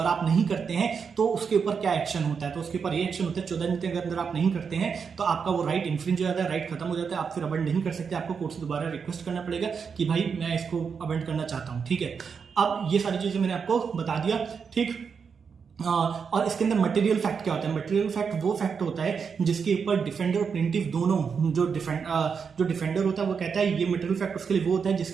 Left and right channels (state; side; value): quieter; left; 6.1 dB